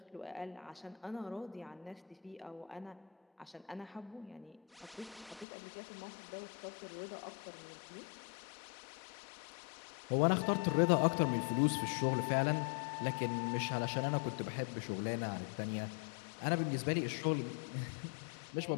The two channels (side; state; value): right; drops out; at 5.5 s